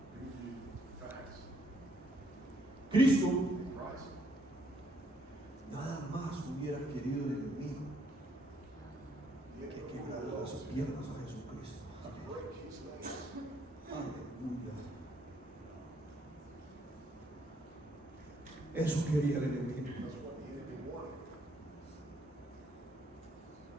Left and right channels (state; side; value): normal; both; correlation 0.70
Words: Cristo nada más hubiera querido de mí que quebrar las piernas a Jesucristo. Aleluya. Eso quería el enemigo.